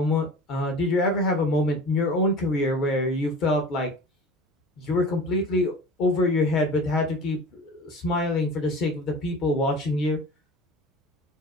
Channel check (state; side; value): normal; both; correlation 0.38